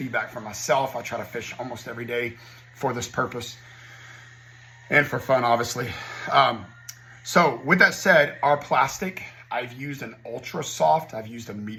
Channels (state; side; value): identical; both; correlation 1.00